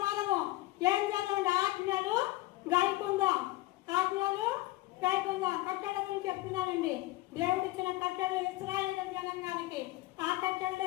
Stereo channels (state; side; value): quieter; right; 18.5 dB